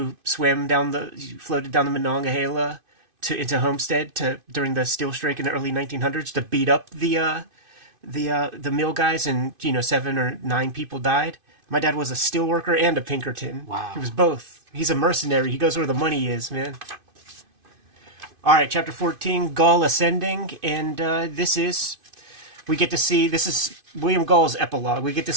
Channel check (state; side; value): late; left; 2.5 ms